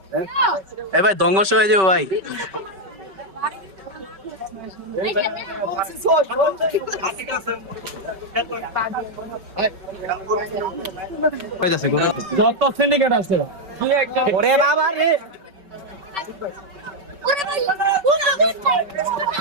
এ ভাই ধ্বংস হয়ে যাবে ভাই। কইতাছে গরু যত সিন্ডিকেট আছে ওরে বাবা রে,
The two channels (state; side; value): late; left; 5.2 ms